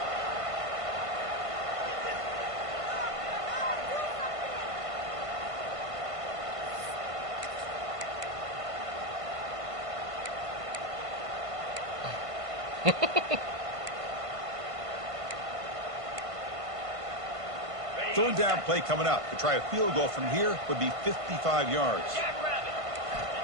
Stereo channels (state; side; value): late; left; 1.5 ms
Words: Third down play coming up. To try a field goal from here would be 55 yards.